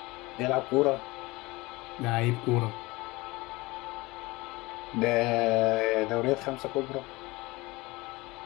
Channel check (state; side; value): quieter; right; 22.1 dB